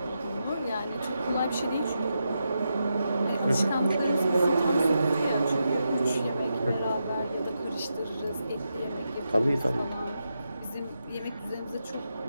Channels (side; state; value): both; inverted; correlation -0.86